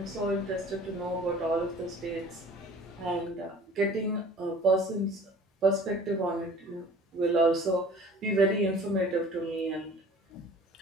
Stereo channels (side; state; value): both; normal; correlation 0.47